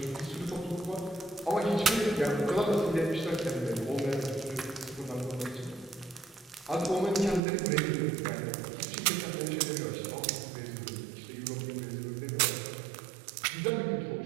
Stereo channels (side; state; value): left; drops out; at 7.4 s